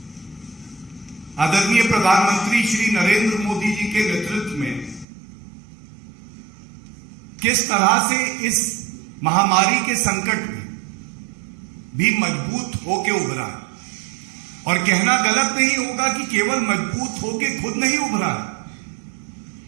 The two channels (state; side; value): drops out; left; at 5.1 s